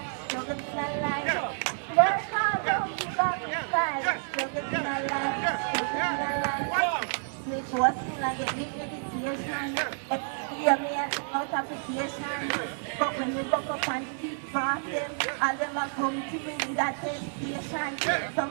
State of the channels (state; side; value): silent; left; 58 dB below the other